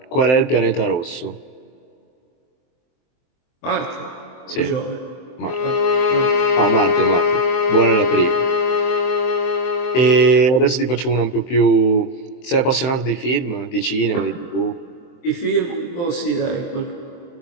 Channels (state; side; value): late; right; 23 ms